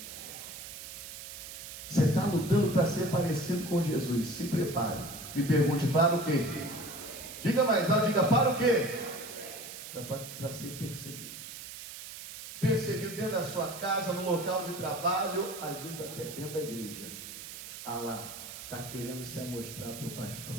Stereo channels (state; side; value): noise; right; hiss, 11 dB below the sound